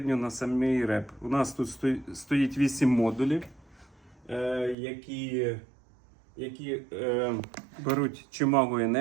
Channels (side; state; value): left; drops out; at 4.8 s